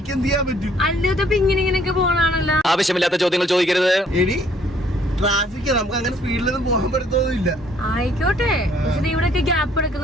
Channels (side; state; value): both; normal; correlation 0.63